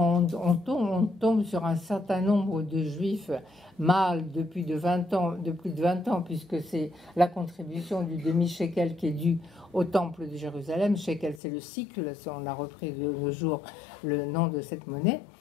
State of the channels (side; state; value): right; drops out; at 11.4 s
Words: tombe sur un certain nombre de juifs mâles de plus de 20 ans, puisque c'est la contribution du demi-shekel qui est due au temple de Jérusalem. Shekel, c'est le cycle, on a repris de nos jours le nom de cette monnaie.